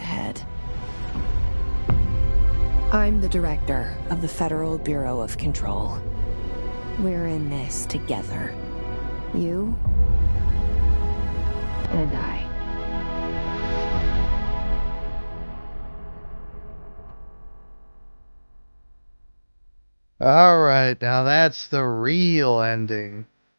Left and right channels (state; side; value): inverted; both; correlation -1.00